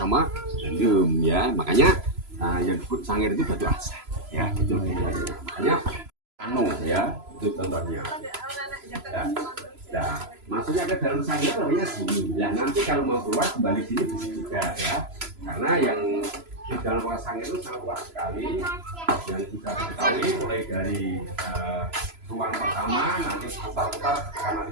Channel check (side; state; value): left; late; 3.0 ms